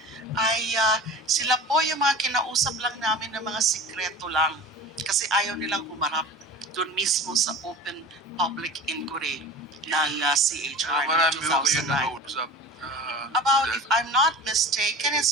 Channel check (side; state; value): both; normal; correlation 0.36